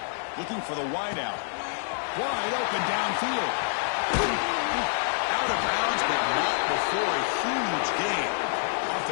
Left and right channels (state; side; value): silent; right; digital silence